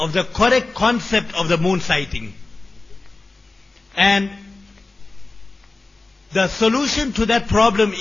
the correct concept of the moon sighting. And the solution to that problem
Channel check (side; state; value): right; quieter; 3.4 dB